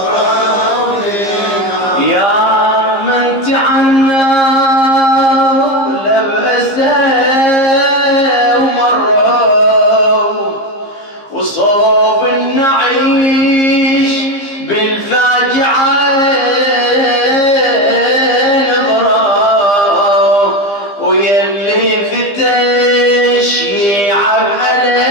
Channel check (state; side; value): late; right; 15 ms